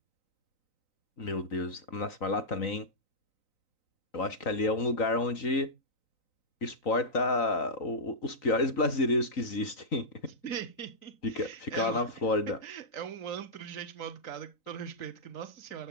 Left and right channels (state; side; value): late; right; 3.9 ms